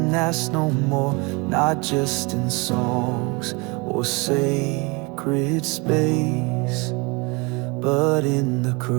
asked no more. Not just in songs or sacred space, but in the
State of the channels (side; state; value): left; quieter; 28.1 dB